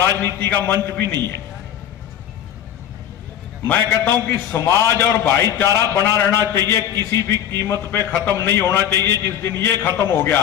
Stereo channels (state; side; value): quieter; right; 10.1 dB